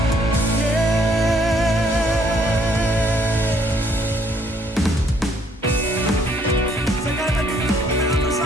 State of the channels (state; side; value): normal; both; correlation 0.66